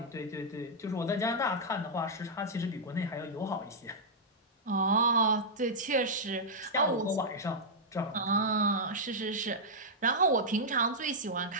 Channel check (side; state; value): both; normal; correlation -0.08